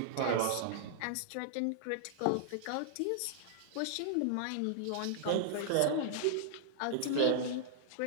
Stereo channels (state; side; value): different; both; correlation -0.01